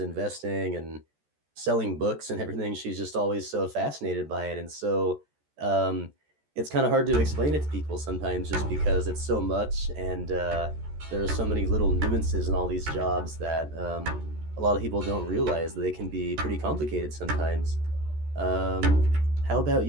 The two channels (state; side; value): late; left; 14 ms